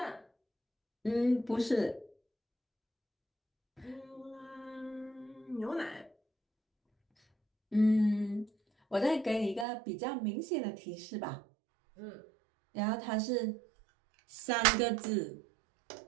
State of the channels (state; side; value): drops out; left; at 9.7 s